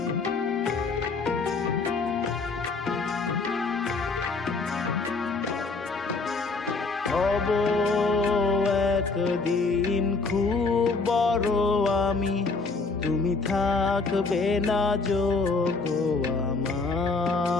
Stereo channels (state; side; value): quieter; right; 4.0 dB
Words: হব একদিন খুব বড় আমি, তুমি থাকবে না যোগ্য